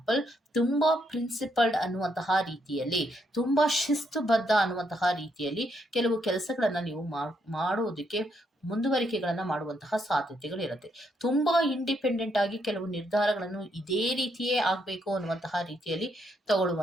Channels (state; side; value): normal; both; correlation 0.76